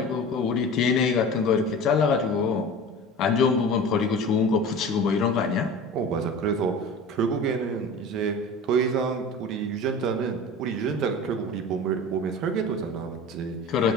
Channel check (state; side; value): normal; both; correlation 0.36